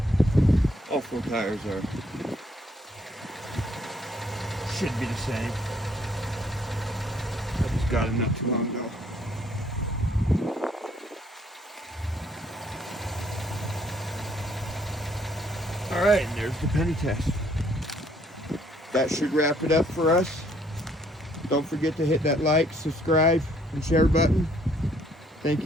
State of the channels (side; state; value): both; normal; correlation 0.66